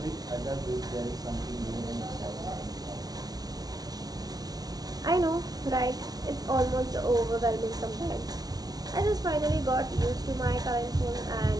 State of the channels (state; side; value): late; left; 0.19 ms